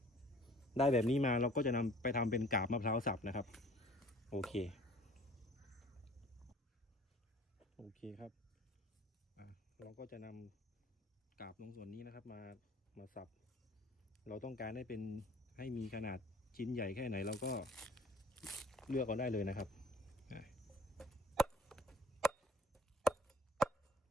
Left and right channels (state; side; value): normal; both; correlation 0.51